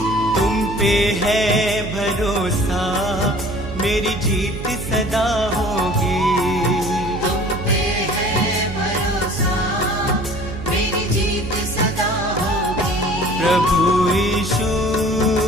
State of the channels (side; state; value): right; noise; hum, 9 dB below the sound